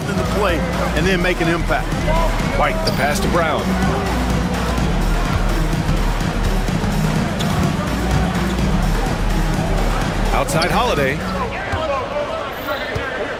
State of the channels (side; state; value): both; identical; correlation 1.00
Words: in the play and then make an impact. White, the pass to Brown. Outside Holiday.